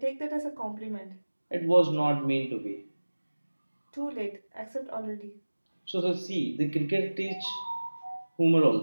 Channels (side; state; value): both; inverted; correlation -1.00